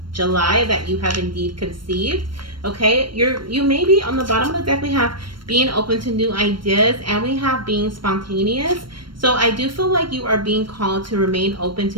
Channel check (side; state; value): left; late; 0.72 ms